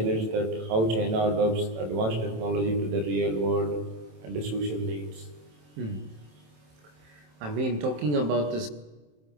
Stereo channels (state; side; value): late; left; 27 ms